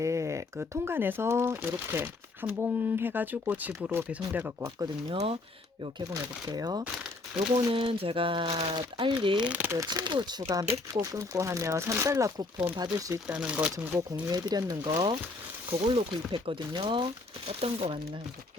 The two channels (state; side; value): quieter; right; 3.2 dB